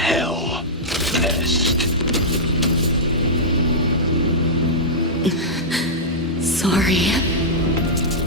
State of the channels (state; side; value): normal; both; correlation -0.11